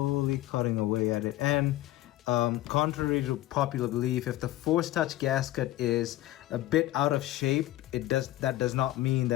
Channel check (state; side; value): quieter; right; 15.5 dB